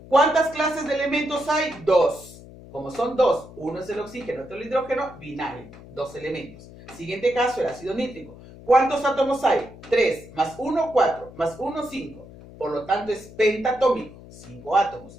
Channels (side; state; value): left; noise; hum, 18 dB below the sound